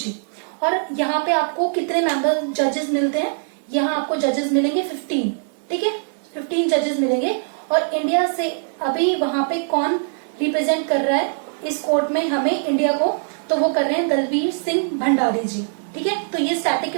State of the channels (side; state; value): left; silent; digital silence